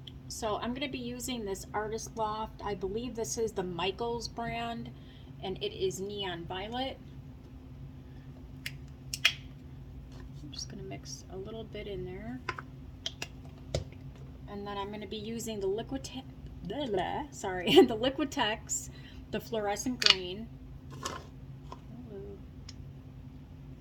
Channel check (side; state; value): both; identical; correlation 1.00